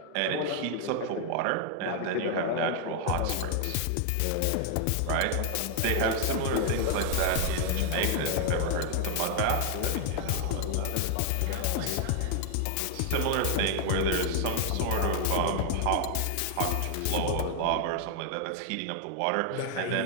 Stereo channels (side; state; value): both; different; correlation 0.00